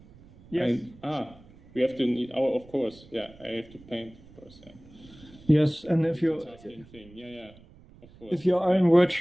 Yes. We have to need our. Of course, yeah. I have to paint, of course. Yeah. Yes, and if you. Thing. Yeah. Of course. If you are in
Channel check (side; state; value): right; noise; rumble, 23 dB below the sound